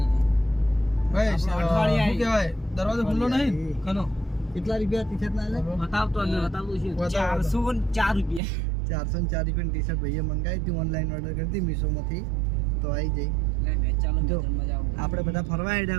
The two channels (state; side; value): drops out; left; at 8.4 s